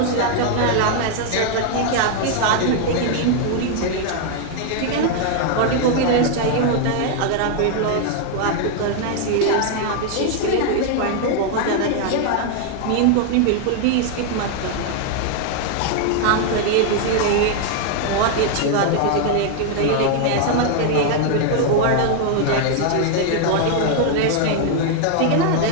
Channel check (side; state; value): both; different; correlation 0.00